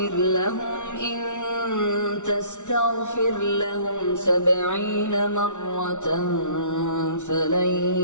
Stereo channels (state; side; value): late; right; 0.85 ms